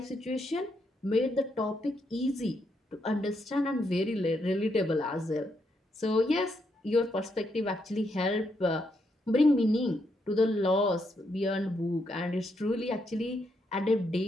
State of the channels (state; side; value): normal; both; correlation 0.78